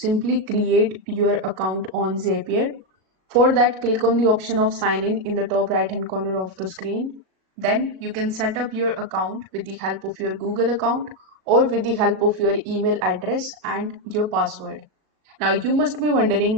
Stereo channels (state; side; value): late; left; 37 ms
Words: create your account on Zapier. For that, click on the option of sign in the top right hand corner of the screen. Then you can set up your account with the help of your Google account or with the help of your email address and your password. Now you must be